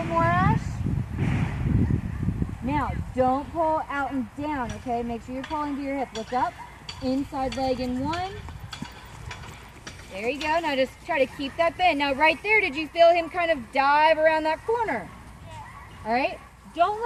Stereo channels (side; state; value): both; identical; correlation 1.00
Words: bit more, Ash. Now, don't pull out and down, okay? Make sure you're pulling to your hip. Look up, inside leg in 1. There you go. Now just try to keep that bend. Now right there, did you feel him kind of dive around that corner? Yeah. All right? Don't